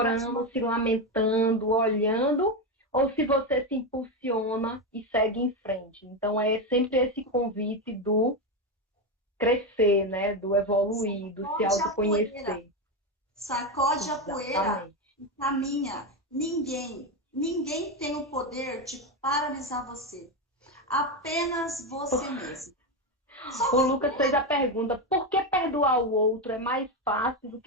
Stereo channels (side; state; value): both; normal; correlation 0.12